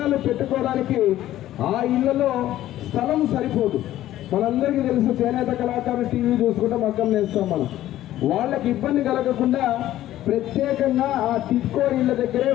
పెట్టుకోవడానికి ఆ ఇళ్లలో స్థలం సరిపోదు. మనందరికీ తెలుసు, చేనేత కళాకారులు టీవీ చూసుకుంటే మగ్గం నేస్తాం మనం. వాళ్ళకి ఇబ్బంది కలగకుండా ప్రత్యేకంగా ఆ టిట్కో ఇళ్ల దగ్గరే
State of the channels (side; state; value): right; quieter; 13.7 dB